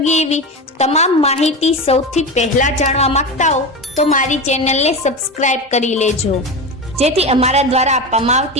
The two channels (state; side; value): normal; both; correlation 0.22